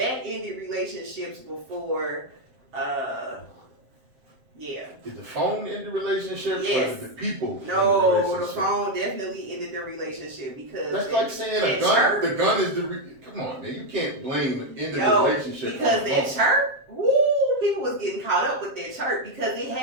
ended relationships before. Yeah. Did the phone end the relationship? Yes. Or did the people? No, end the the relationship? phone definitely ended the relationship because That's like saying a gun. The gun is come on, man. You can't blame the end of the relationship because that chirp. Woo, people was getting caught up with that chirp because it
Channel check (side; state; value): left; late; 7.6 ms